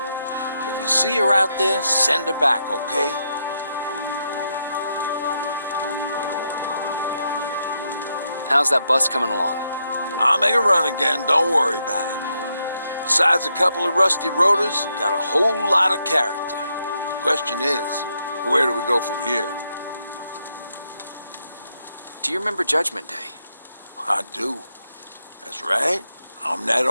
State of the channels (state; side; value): inverted; both; correlation -0.80